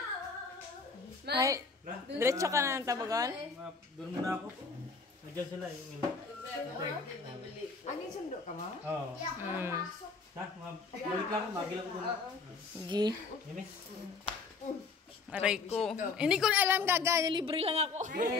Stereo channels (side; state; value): right; quieter; 4.5 dB